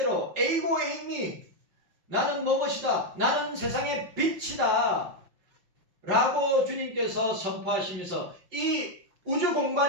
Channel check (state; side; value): late; left; 5.7 ms